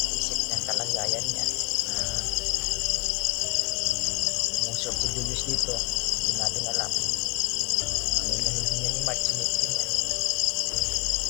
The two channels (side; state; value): right; quieter; 19.5 dB